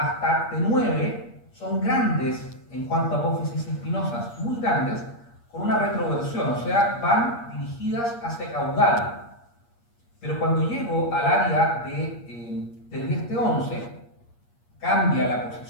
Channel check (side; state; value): right; late; 8.5 ms